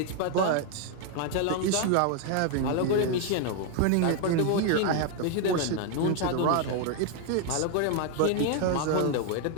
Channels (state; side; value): different; both; correlation 0.01